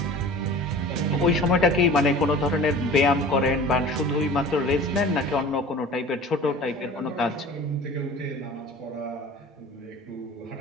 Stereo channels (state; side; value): normal; both; correlation 0.41